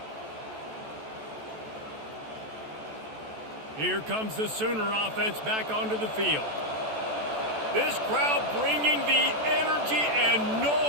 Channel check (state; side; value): late; left; 14 ms